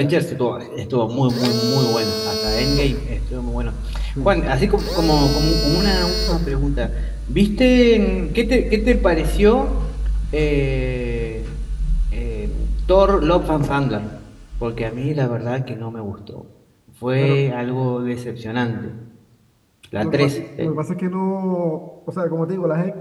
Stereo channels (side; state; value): both; identical; correlation 1.00